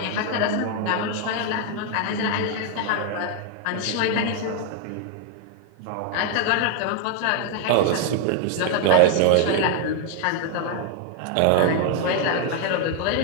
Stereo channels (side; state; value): both; different; correlation 0.00